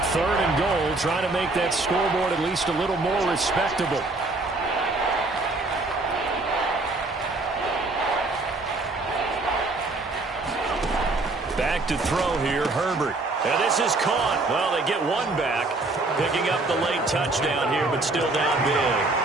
Third and goal, trying to make that scoreboard at least a little more respectable. Back to throw here, Herbert. And this is caught. Well, they get one back, picking up the late touchdown here, but still down big.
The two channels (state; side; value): quieter; left; 3.2 dB